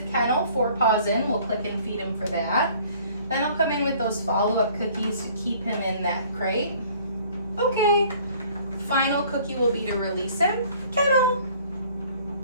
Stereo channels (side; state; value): both; inverted; correlation -0.54